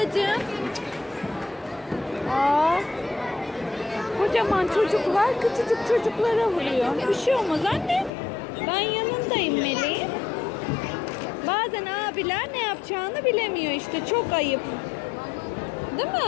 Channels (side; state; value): right; drops out; at 8.1 s